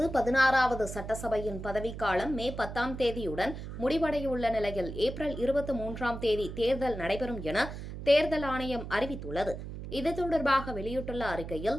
16வது சட்டசபையின் பதவிக்காலம் மே 10ஆம் தேதியுடன் முடிவடையுள்ள நிலையில் ஏப்ரல் 23ஆம் தேதி தேர்தல் நடைபெறும் என தேர்தல் ஆணையம் அறிவித்துள்ளது. இது தொடர்பாக வெளியிட்டுள்ள அறிக்கையில்,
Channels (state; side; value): noise; right; hum, 9 dB below the sound